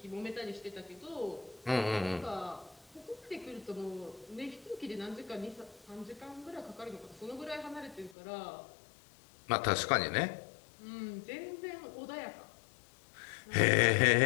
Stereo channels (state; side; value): drops out; right; at 8.2 s